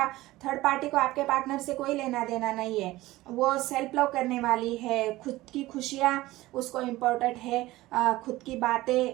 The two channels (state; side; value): quieter; left; 18.0 dB